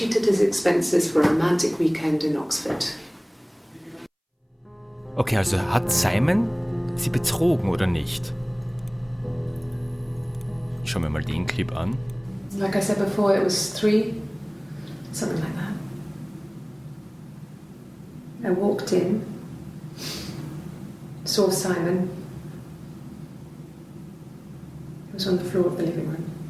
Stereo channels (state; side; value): identical; both; correlation 1.00